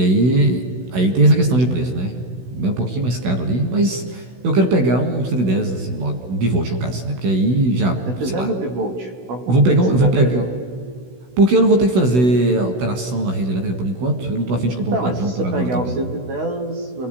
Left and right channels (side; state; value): left; late; 16 ms